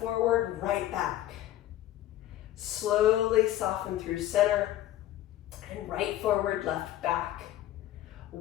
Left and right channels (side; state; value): right; quieter; 13.6 dB